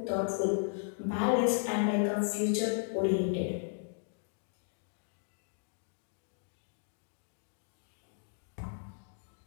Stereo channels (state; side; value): silent; right; digital silence